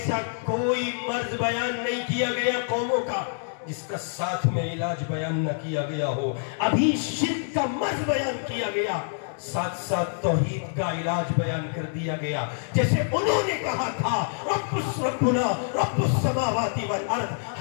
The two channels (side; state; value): right; silent; digital silence